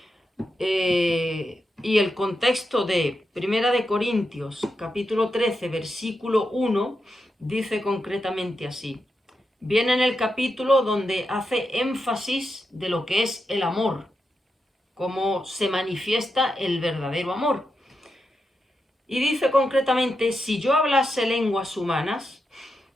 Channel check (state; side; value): normal; both; correlation 0.86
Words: Y el contexto de Primera de Corintios, capítulo 13, versículo 1, dice concretamente así. Viene en el capítulo donde hace énfasis de lo que es el amor, cómo se manifiesta el verdadero amor. Y dice concretamente: si yo hablase lenguas humanas